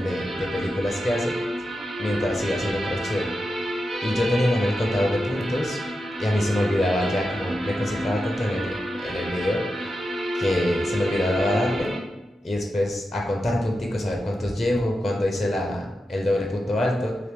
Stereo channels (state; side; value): normal; both; correlation 0.89